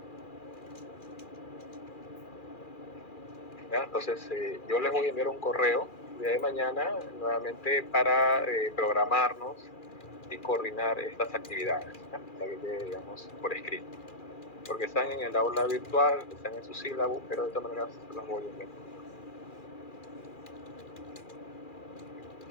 ¿Ya? Entonces, yo les voy a enviar un correo el día de mañana nuevamente para programarnos y coordinar estas actividades, ¿ya? Para que quede, digamos, por escrito. Porque están en el aula virtual, están en su sílabo, pero de todas maneras se los voy a enviar.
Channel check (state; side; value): late; right; 2.4 ms